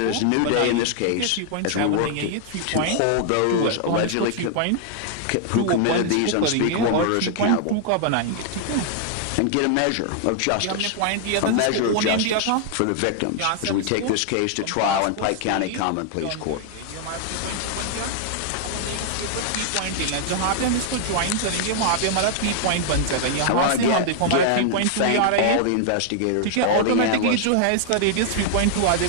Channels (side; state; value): both; different; correlation 0.00